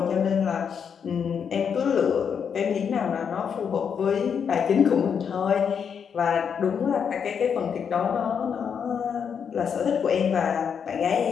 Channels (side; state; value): right; quieter; 7.1 dB